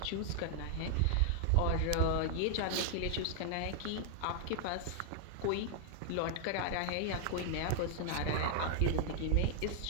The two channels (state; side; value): different; both; correlation 0.00